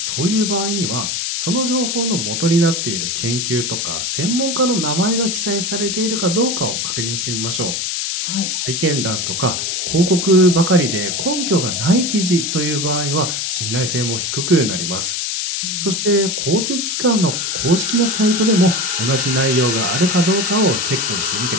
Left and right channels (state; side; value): noise; left; hiss, 1 dB below the sound